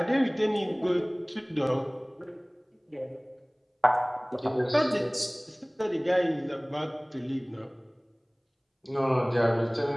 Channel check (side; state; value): both; identical; correlation 1.00